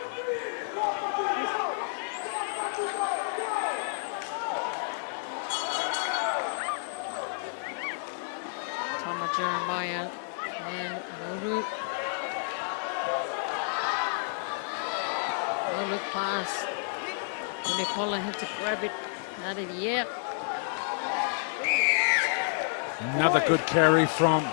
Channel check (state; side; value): silent; right; digital silence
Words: Tama Jeremiah and Nauru. No look pass. Unipola had to grab it out of the air. Another good carry from